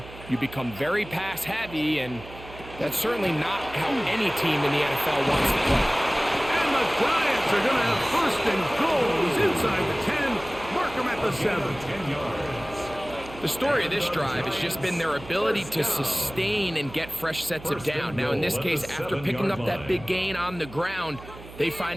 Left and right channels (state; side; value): noise; right; hum, 16 dB below the sound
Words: You become very pass-heavy, and that's certainly not how any team in the NFL wants to play. And the Giants are going to have first and goals inside the 10. Mark them at the 7. 10 yards. The story of this drive has just been their ability to sustain and get fresh sets of down. Now, in this case, after picking up that big gain on the ground, they